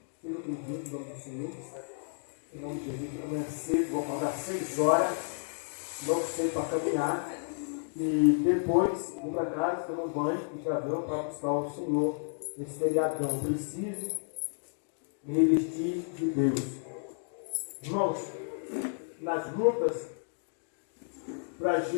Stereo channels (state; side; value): silent; right; digital silence